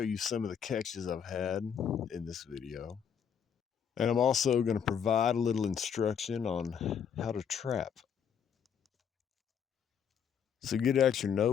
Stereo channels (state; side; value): quieter; right; 7.7 dB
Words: you some of the catches I've had in this video. And I'm also going to provide a little instruction on how to trap. So get out your